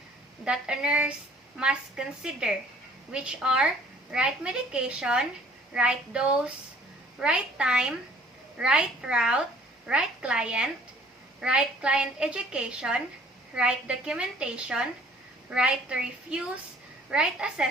that a nurse must consider, which are right medication, right dose, right time, right route, right client education, right documentation, right to refuse, right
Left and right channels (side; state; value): both; normal; correlation 0.56